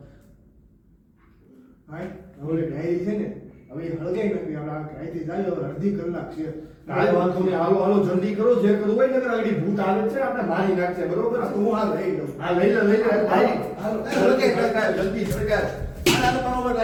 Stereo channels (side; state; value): both; identical; correlation 1.00